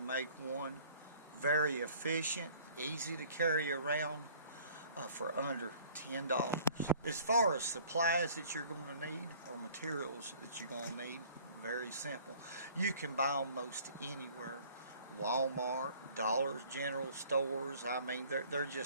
make one very efficient, easy to carry around for under $10. As far as supplies that you're going to need or materials that you're going to need, very simple. You can buy them most anywhere. Walmart, Dollar General stores, I mean they're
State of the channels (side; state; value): both; inverted; correlation -0.52